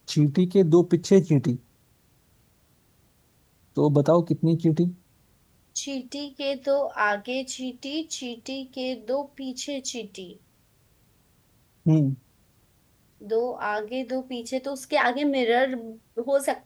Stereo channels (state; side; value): identical; both; correlation 1.00